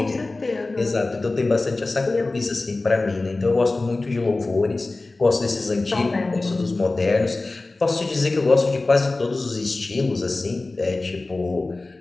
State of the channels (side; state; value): right; quieter; 3.2 dB